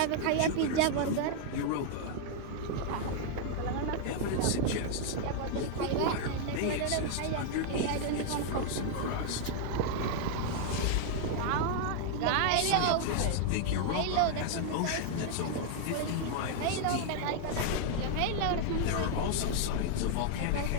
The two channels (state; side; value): different; both; correlation 0.00